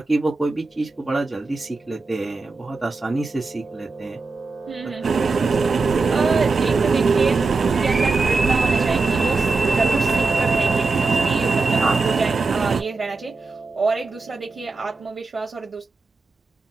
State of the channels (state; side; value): quieter; left; 3.9 dB